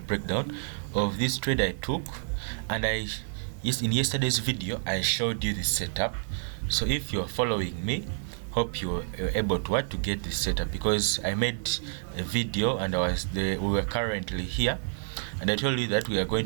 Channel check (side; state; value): left; silent; digital silence